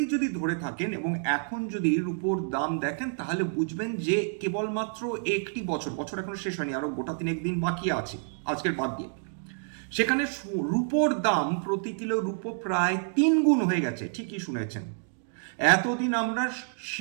যদি ধরে থাকেন এবং এখন যদি রূপোর দাম দেখেন, তাহলে বুঝবেন যে কেবলমাত্র একটি বছর এখনো শেষ হয়নি, আরো গোটা 3 দিন বাকি আছে আজকের বাদ দিয়ে, সেখানে রূপোর দাম প্রতি কিলো রূপো প্রায় 3 গুণ হয়ে গেছে। ঠিকই শুনেছেন। এতদিন আমরা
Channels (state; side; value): silent; left; digital silence